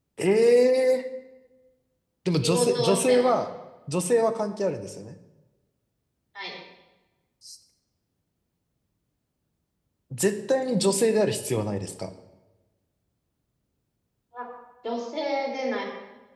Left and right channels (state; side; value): identical; both; correlation 1.00